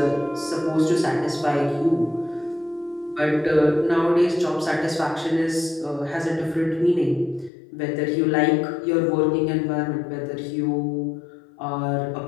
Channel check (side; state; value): right; drops out; at 7.5 s